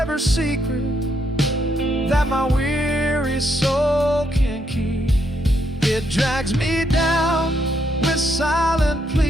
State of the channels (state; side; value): normal; both; correlation 0.76